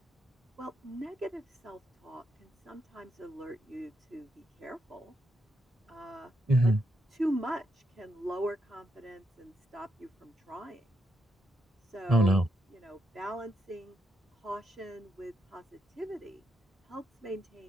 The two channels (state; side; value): normal; both; correlation 0.80